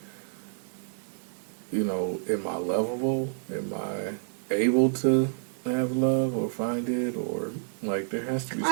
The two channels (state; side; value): silent; left; 59 dB below the other